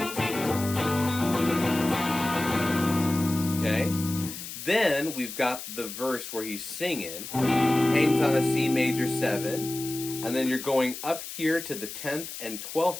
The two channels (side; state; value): left; noise; hiss, 9 dB below the sound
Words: Okay, then we've got the verse where he's singing, hangs on a C major 7. And then you're going up here to the 10th and